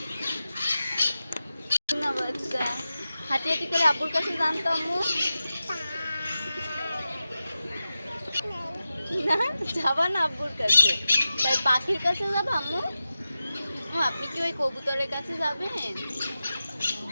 না বাচ্চা হাঁটি হাঁটি করে আব্বুর কাছে জানতো আম্মু না, যাবা না আব্বুর কাছে, তাই পাখির কাছে যাবা আম্মু? আপনি কি ওই কবুতরের কাছে যাবেন?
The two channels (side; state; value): both; inverted; correlation -0.92